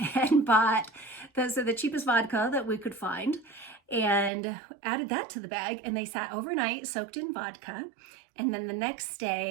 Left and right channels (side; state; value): left; drops out; at 4.3 s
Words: and bought the cheapest vodka that we could find and added that to the bag. And they sat overnight soaked in vodka. And then the next